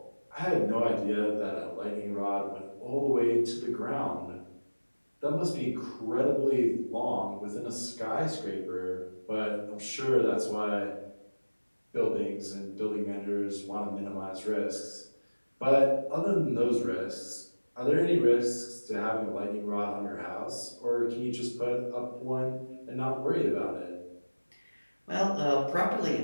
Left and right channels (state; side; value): inverted; both; correlation -1.00